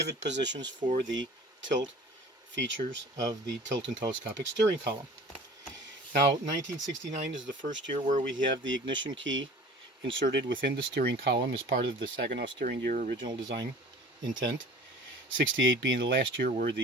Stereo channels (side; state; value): both; normal; correlation 0.44